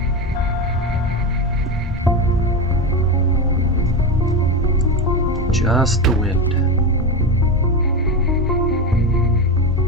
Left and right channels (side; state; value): both; normal; correlation 0.17